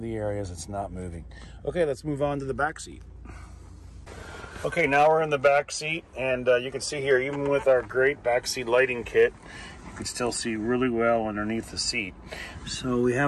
the areas it's not moving. Okay, let's move on to the back seat. Okay, now we're in the back seat, and you can see here, even with our great back seat lighting kit, you can still see really well underneath the seat. So we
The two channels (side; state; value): both; identical; correlation 1.00